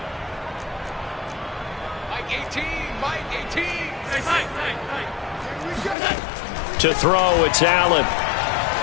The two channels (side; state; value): right; drops out; at 6.0 s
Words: To throw, it's Allen.